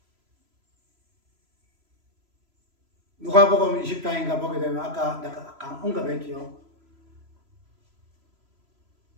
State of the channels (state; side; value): late; left; 3.0 ms